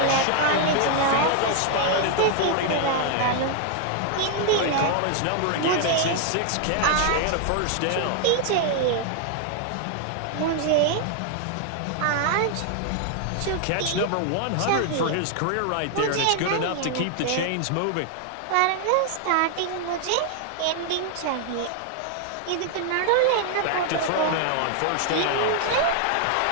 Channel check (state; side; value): different; both; correlation 0.00